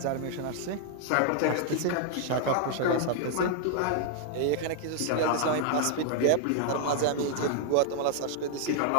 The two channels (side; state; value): both; different; correlation 0.00